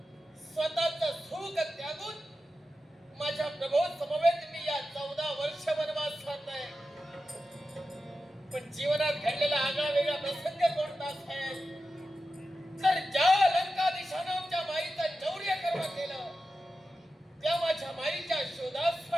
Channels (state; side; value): normal; both; correlation 0.92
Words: स्वतःचं सुख त्यागून माझ्या प्रभू समवेत मी या 14 वर्ष वनवासात आहे. पण जीवनात घडलेला आगळा वेगळा प्रसंग कोणता असेल तर ज्या लंकाधीशानं आमच्या माईचं चौर्य कर्म केलं त्या माझ्या माईच्या